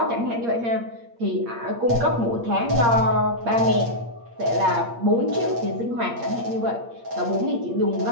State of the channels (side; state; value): left; late; 8.6 ms